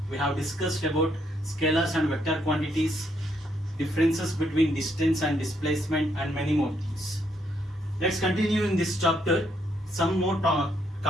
we have discussed about scalars and vector quantities, differences between distance and displacement, and many more things. Let's continue in this chapter some more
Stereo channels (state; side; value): normal; both; correlation 0.74